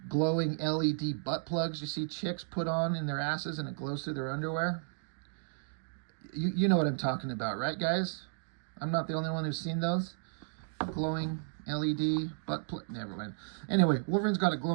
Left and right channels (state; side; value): silent; left; digital silence